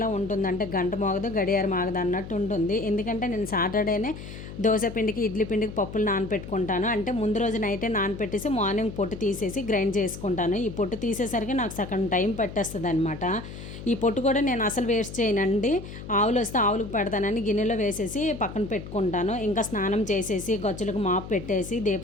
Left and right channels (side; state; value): left; noise; hum, 12 dB below the sound